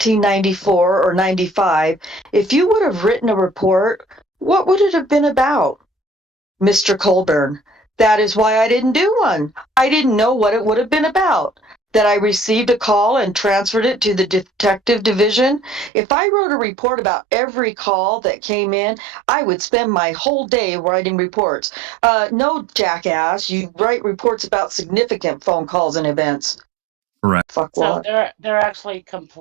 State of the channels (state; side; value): drops out; left; at 15.9 s